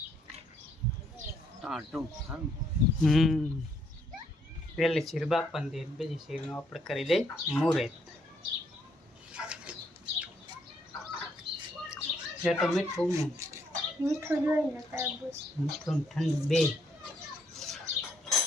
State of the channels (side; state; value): both; normal; correlation 0.71